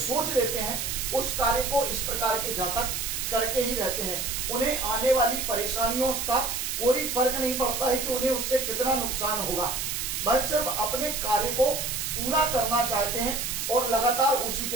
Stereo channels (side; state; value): right; noise; hiss, 2 dB below the sound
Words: लेते हैं उस कार्य को इस प्रकार के जातक करके ही रहते हैं। उन्हें आने वाली परेशानियों का कोई फर्क नहीं पड़ता है कि उन्हें उससे कितना नुकसान होगा, वह सिर्फ अपने कार्य को पूरा करना चाहते हैं और लगातार उसी